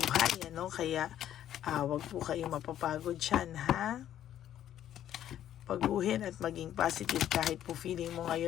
ano? Kaya wag po kayong mapapagod dyan, ha? Paguhin at maging positive kahit po feeling mo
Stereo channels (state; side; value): quieter; right; 11.3 dB